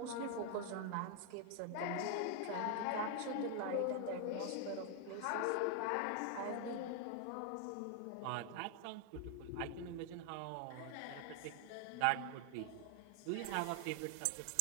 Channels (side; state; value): both; different; correlation 0.00